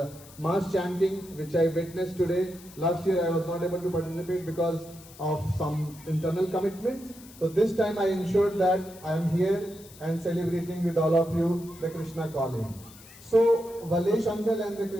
mass chanting which I witnessed today. Last year I was not able to participate because of some internal commitments. So this time I ensured that I am here and celebrating with all of you the Krishna Calling. So Valesh uncle and the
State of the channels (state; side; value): noise; left; hiss, 21 dB below the sound